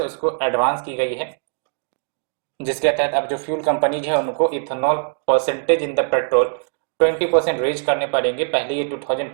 उसको एडवांस की गई है, जिसके तहत अब जो फ्यूल कंपनीज है उनको ethanol percentage in the petrol 20% raise करने पड़ेंगे। पहले ये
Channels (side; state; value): left; silent; digital silence